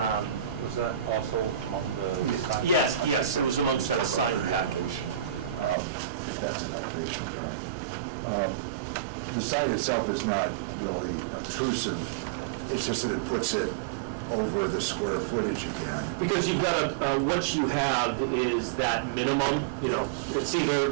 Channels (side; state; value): left; drops out; at 5.8 s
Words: Was that also on the sign? Yes, it was amongst that sign package. If that's an elevation drawing. the sign itself is not really obtrusive, it's just that it puts it over the square footage again. Because you've got what you have is that minimum, it's